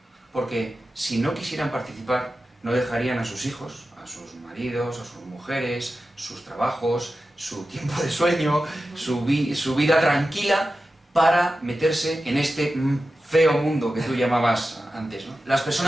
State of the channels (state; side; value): normal; both; correlation 0.93